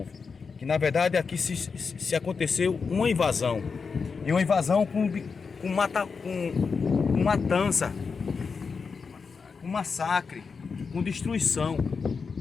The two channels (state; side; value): quieter; right; 5.2 dB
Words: Que na verdade aqui se aconteceu uma invasão, e uma invasão com matança, com massacre, com destruição.